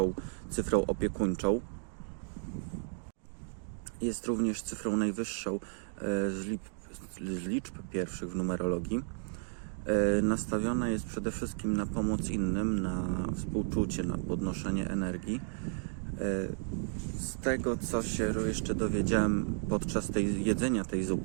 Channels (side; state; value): left; silent; 56 dB below the other